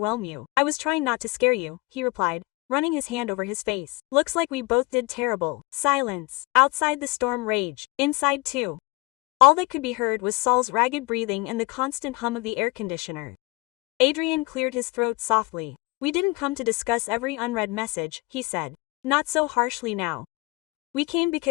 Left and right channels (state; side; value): quieter; right; 24.6 dB